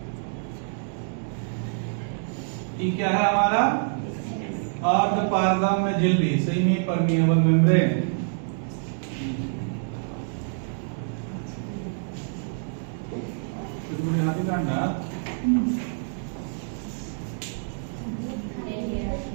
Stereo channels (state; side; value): silent; left; digital silence